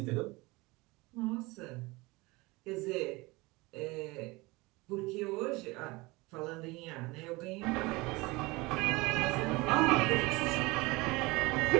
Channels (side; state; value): left; quieter; 23.2 dB